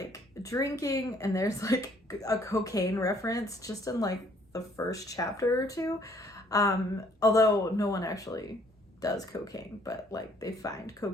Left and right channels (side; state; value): both; normal; correlation 0.63